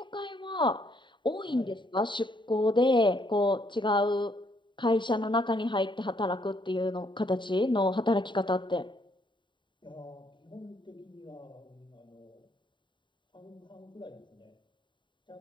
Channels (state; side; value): late; right; 0.23 ms